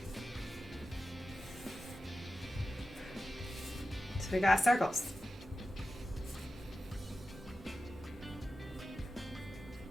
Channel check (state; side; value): normal; both; correlation 0.93